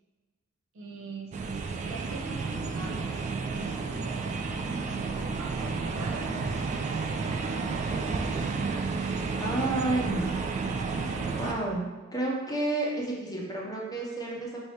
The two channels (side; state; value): left; quieter; 3.2 dB